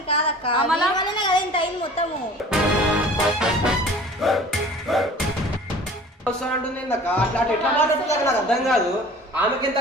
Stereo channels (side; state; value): both; normal; correlation 0.45